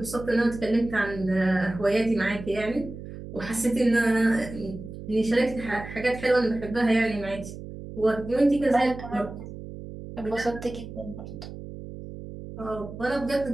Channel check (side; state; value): right; noise; hum, 12 dB below the sound